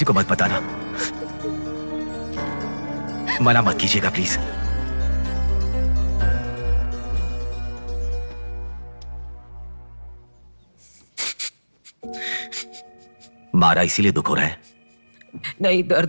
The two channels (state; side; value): inverted; both; correlation -1.00